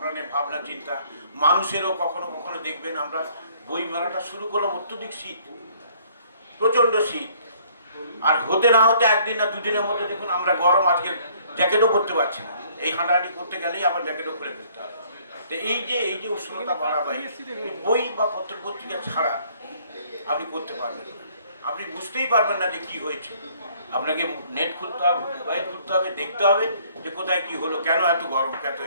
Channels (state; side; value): inverted; both; correlation -0.60